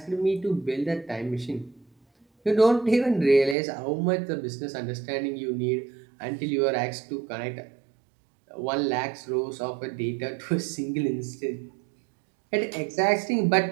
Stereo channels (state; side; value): drops out; left; at 3.6 s